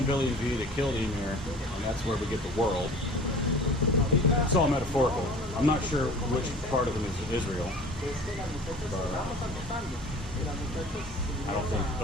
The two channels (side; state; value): both; normal; correlation 0.43